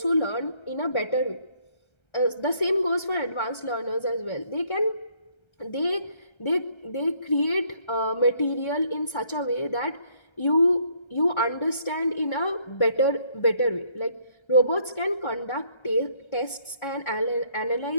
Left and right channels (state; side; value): late; right; 1.3 ms